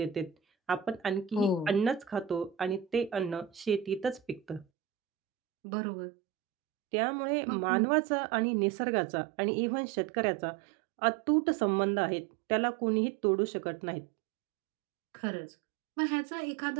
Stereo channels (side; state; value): left; drops out; at 4.7 s